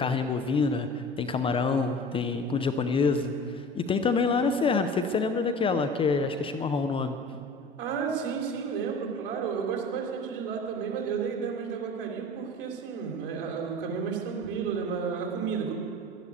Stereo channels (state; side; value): normal; both; correlation 0.40